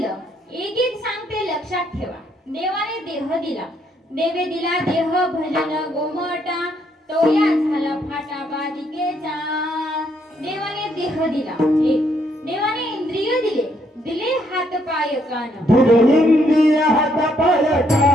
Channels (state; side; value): normal; both; correlation 0.72